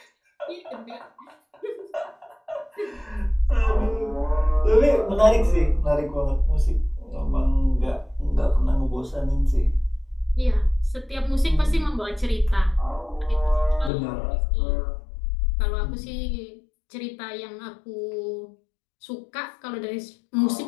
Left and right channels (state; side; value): drops out; right; at 13.9 s